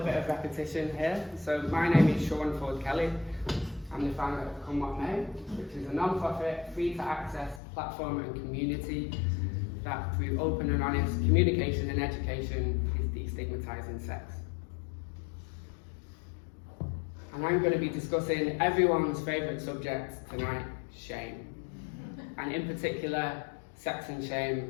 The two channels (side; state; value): right; drops out; at 7.6 s